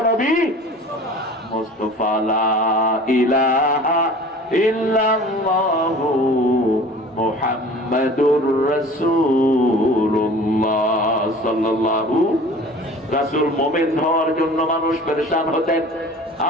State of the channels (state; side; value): normal; both; correlation 0.43